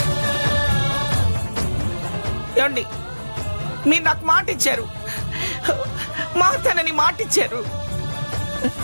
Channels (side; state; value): both; inverted; correlation -1.00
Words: ఏమండి, మీరు నాకు మాట ఇచ్చారు, మా తనని మాట ఇచ్చారు.